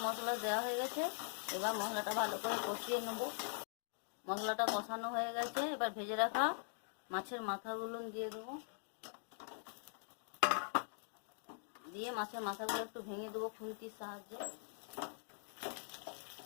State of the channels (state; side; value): silent; right; digital silence